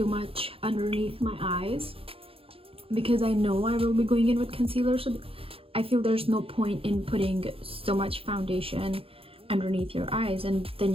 much underneath my eyes because I know I will be going in with concealer, so I feel there's no point in putting so much foundation underneath your eyes and then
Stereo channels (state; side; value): late; left; 0.27 ms